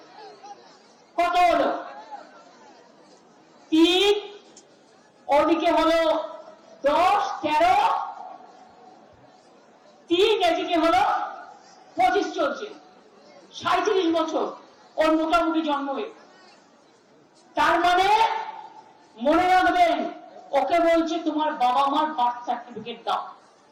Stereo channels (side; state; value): both; identical; correlation 1.00